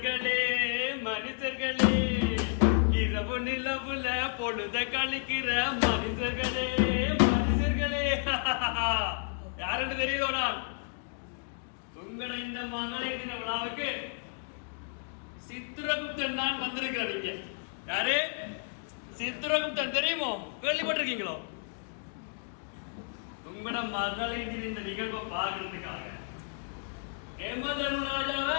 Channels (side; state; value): right; silent; 57 dB below the other